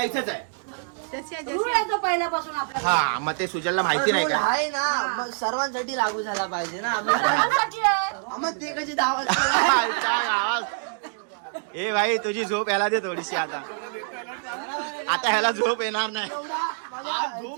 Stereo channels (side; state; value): left; silent; digital silence